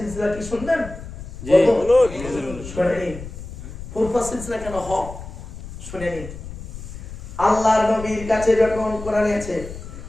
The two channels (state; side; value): noise; left; rumble, 12 dB below the sound